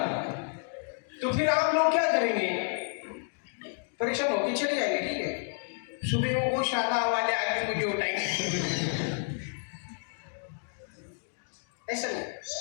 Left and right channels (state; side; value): silent; right; 57 dB below the other